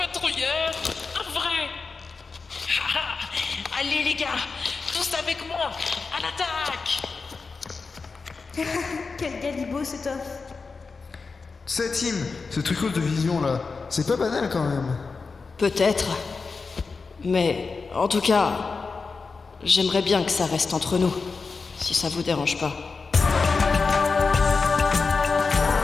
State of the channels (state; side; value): quieter; right; 4.5 dB